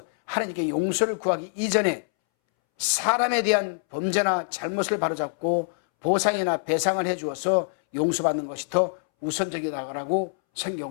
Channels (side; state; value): right; silent; 62 dB below the other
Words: 하나님께 용서를 구하기 이전에 사람에 대한 범죄나 잘못을 바로잡고 보상이나 배상을 해주어서 용서받는 것이 더 우선적이라고